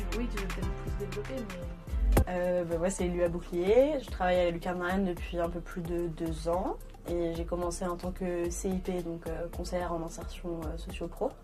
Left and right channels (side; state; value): both; identical; correlation 1.00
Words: Oui, tu veux peut-être plus développer, mais... Moi, c'est Lua Bouclier. Je travaille à la Lucarne Marianne depuis un peu plus de 2 ans. Et j'ai commencé en tant que CIP, donc conseillère en insertion socio-pro.